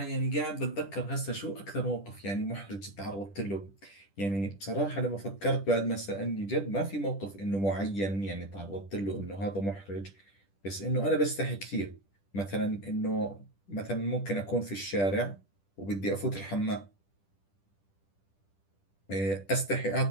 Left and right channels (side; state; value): right; late; 10 ms